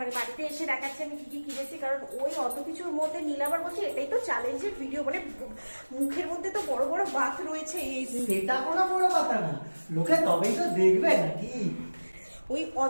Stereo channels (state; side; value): inverted; both; correlation -1.00